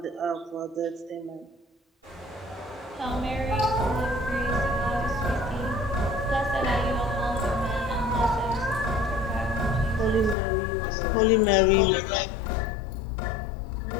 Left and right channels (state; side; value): drops out; right; at 10.4 s